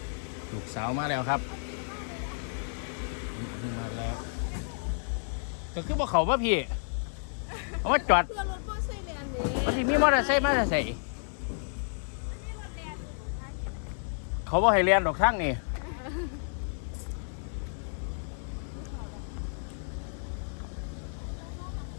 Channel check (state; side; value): silent; right; digital silence